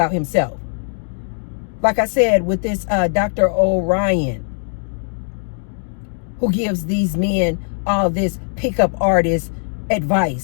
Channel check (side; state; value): right; silent; 66 dB below the other